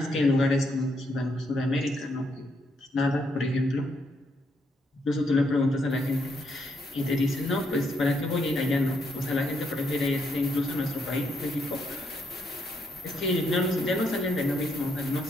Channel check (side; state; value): both; normal; correlation 0.76